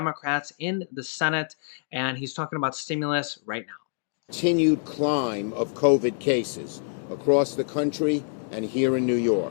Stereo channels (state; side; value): silent; right; 61 dB below the other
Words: in the Senate, and he's talking about stimulus right now. Continued climb of COVID cases across the country and here in New York.